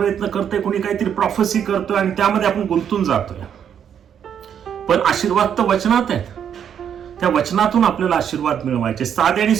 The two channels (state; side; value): quieter; left; 8.6 dB